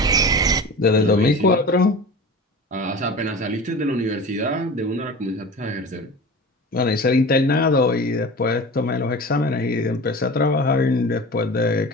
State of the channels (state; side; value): normal; both; correlation 0.35